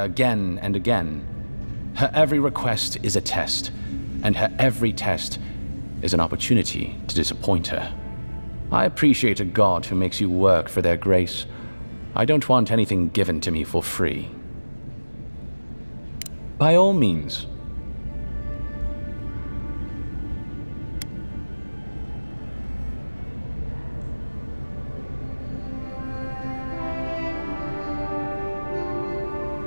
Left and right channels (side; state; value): both; inverted; correlation -1.00